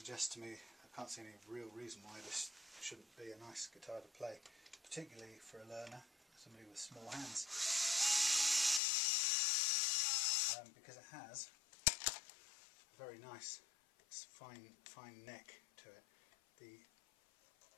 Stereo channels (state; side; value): drops out; right; at 8.8 s